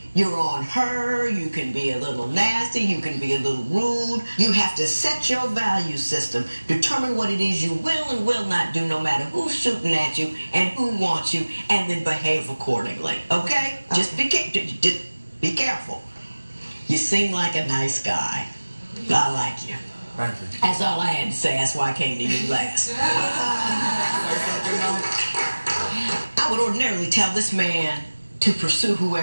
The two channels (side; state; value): both; inverted; correlation -1.00